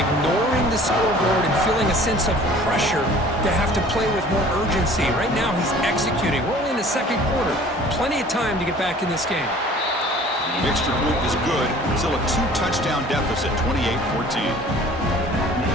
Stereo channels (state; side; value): normal; both; correlation 0.49